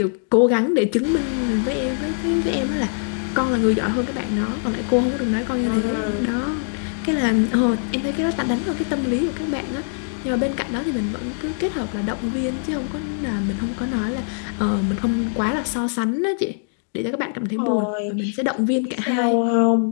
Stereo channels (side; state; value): right; silent; digital silence